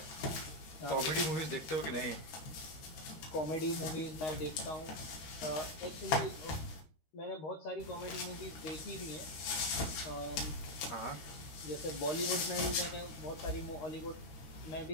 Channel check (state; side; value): late; right; 13 ms